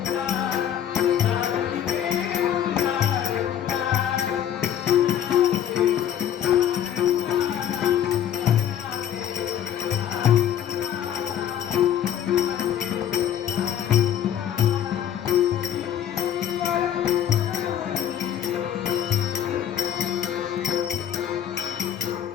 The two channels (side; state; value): right; quieter; 10.1 dB